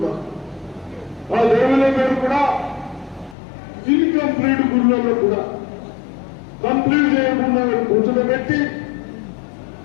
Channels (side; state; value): right; drops out; at 3.4 s